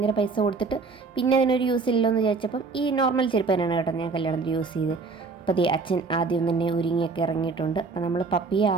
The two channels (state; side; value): quieter; left; 4.4 dB